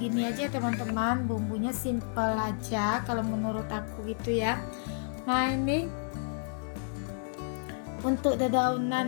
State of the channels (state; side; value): silent; right; 56 dB below the other